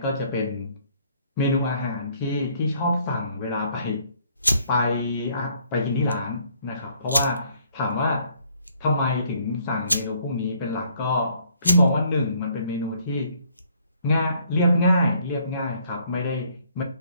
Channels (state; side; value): inverted; both; correlation -0.64